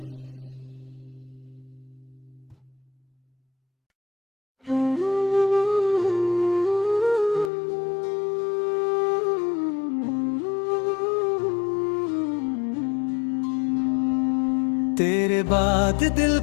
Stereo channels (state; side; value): drops out; right; at 7.5 s